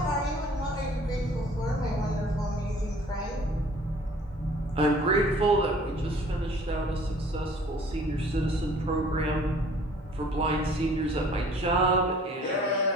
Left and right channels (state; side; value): normal; both; correlation 0.53